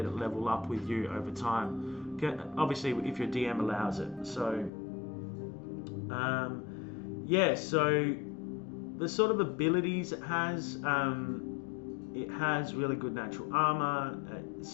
it level up with you over time, obviously if your DM allows it. So yeah, so the sort of abilities it has really good natural armor. Its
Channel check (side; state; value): right; drops out; at 4.7 s